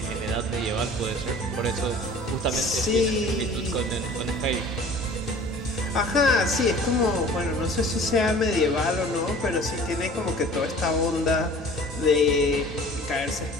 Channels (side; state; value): both; normal; correlation 0.46